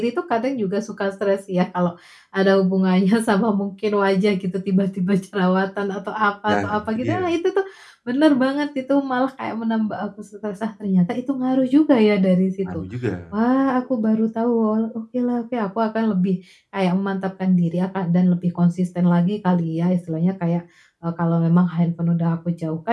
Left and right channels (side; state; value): both; identical; correlation 1.00